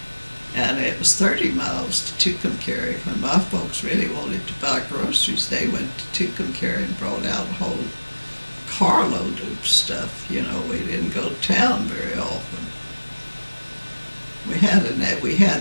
And it was 30 miles to Tucumcari. When my folks really wanted to buy groceries, they went to Tucumcari and brought out a whole carload of stuff. We didn't go to town very often.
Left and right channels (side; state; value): both; inverted; correlation -1.00